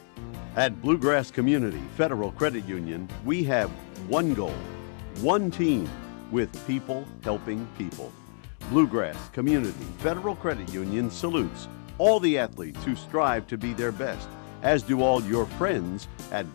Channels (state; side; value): silent; right; digital silence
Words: At Bluegrass Community Federal Credit Union, we have one goal, one team, with people helping people. Bluegrass Community Federal Credit Union salutes all the athletes who strive to be their best, as do all your friends at